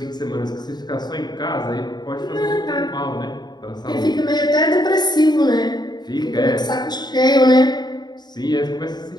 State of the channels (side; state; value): right; late; 0.20 ms